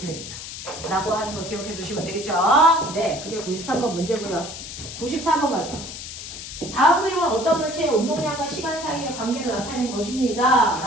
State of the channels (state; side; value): noise; left; hiss, 10 dB below the sound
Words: 됩니다. 라고 하는 거 기억해 두시면 되겠죠? 네, 그게 93번 문제고요. 94번 가죠. 다음 그림은 어떤 물체의 운동량과 시간 사이의 관계를 나타낸 것입니다.